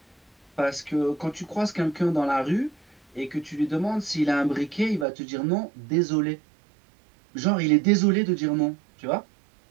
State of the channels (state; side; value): drops out; left; at 5.1 s